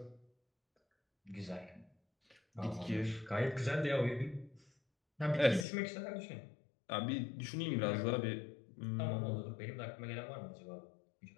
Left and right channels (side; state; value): right; drops out; at 5.7 s